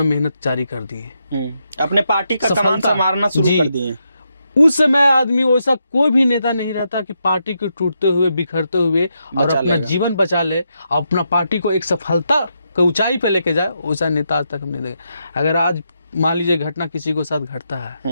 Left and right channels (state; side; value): inverted; both; correlation -0.82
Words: मेहनत जारी कर दिए, अपने पार्टी का कमान संभालना शुरू कर दिए। उस समय आदमी वैसा कोई भी नेता नहीं रहता कि पार्टी को टूटते हुए बिखरते हुए और अपना जीवन बचा ले, अपना पार्टी को एक सफलता को ऊंचाई पे लेके जाए, वैसा नेता आज तक हमने देखा। अगर आज मान लीजिए घटना किसी को साथ घटता